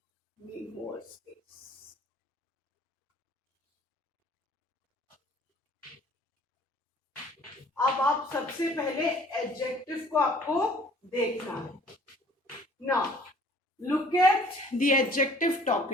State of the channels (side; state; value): both; normal; correlation 0.54